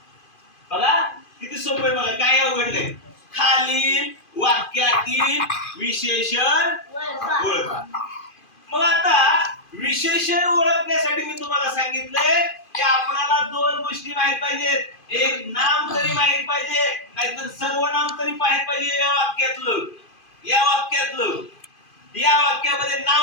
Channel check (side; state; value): right; late; 2.5 ms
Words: बघा किती सोपं आहे, बघा काय अवघड नाही. खालील वाक्यातील विशेषण ओळखा. मग आता विशेषण ओळखण्यासाठी मी तुम्हाला सांगितलंय की आपल्याला दोन गोष्टी माहित पाहिजेत. एक नाम तरी माहित पाहिजे, नाहीतर सर्वनाम तरी माहित पाहिजे. या वाक्यामध्ये